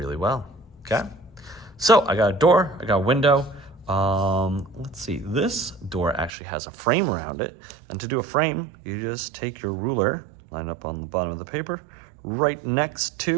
well, okay? So I got a door, I got a window. Let's see, this door actually has a frame around it, and to do a frame, you just take your ruler, line up on the bottom of the paper, right next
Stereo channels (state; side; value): drops out; left; at 6.3 s